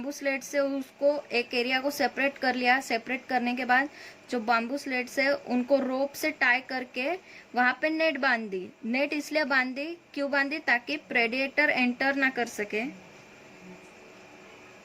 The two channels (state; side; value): identical; both; correlation 1.00